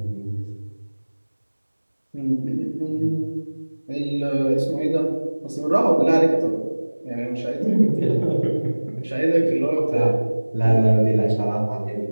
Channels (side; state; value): both; inverted; correlation -1.00